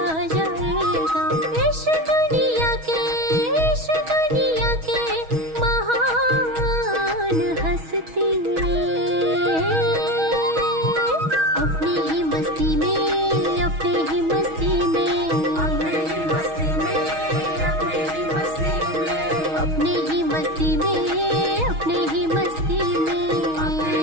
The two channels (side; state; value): left; late; 6.3 ms